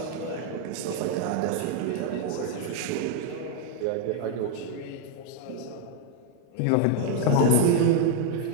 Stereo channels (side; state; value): both; different; correlation 0.00